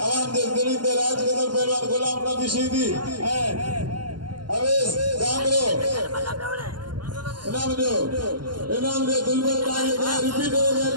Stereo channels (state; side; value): late; left; 0.71 ms